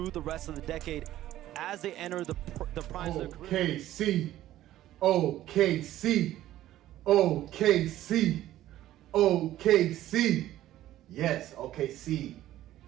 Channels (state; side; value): quieter; left; 13.9 dB